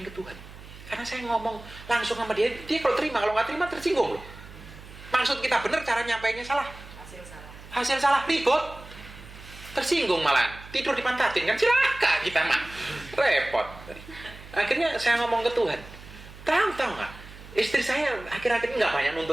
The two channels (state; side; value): noise; right; hum, 17 dB below the sound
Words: ke Tuhan. Karena saya ngomong langsung sama dia kalau terima, kalau nggak terima tersinggung loh. Maksud kita benar, cara nyampainya salah. Hasil salah, ribut. Tersinggung malah, tidur dipantatin kan celaka kita mah. Repot. Akhirnya saya ngomong ke Tuhan. Tahu nggak? Istri saya akhir-akhir ini nggak banyak